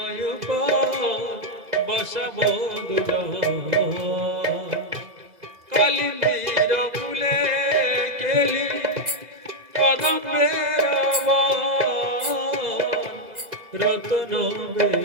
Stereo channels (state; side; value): late; left; 2.0 ms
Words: বসবদুল কালিন্দির কুলে কেলি কদম্বের রতন